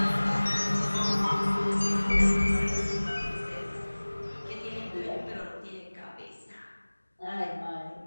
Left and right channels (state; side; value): inverted; both; correlation -1.00